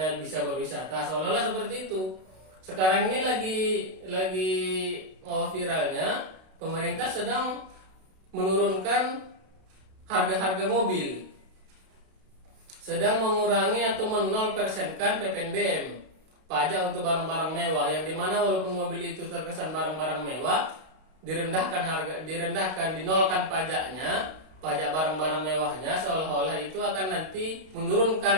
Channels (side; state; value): left; late; 32 ms